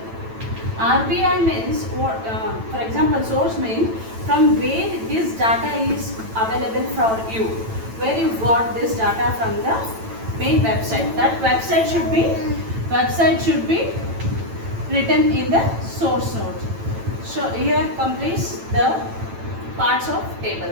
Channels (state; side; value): late; left; 9.0 ms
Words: RBI means, for example, source means from where this data is available for you, where you got this data from the main website. That website should be written in the source note. So here completes the parts of